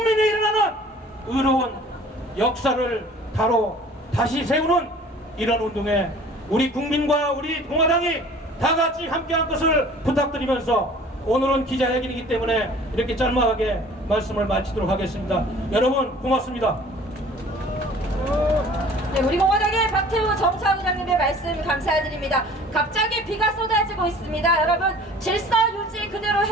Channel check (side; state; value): both; normal; correlation 0.49